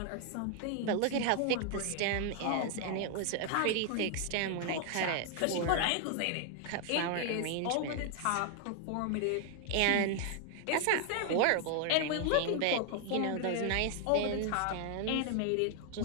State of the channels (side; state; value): both; different; correlation 0.00